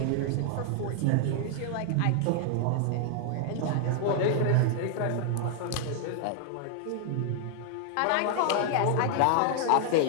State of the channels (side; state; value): both; different; correlation 0.00